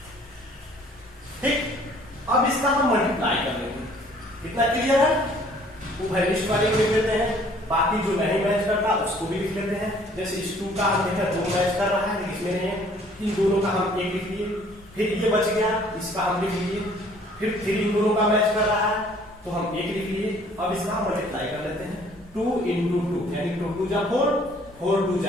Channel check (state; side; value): normal; both; correlation 0.57